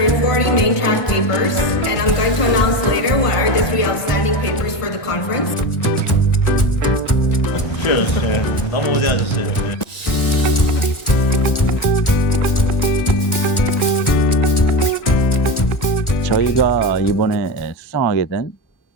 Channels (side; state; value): right; late; 1.4 ms